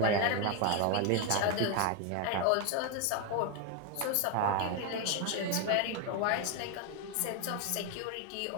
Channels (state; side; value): different; both; correlation 0.01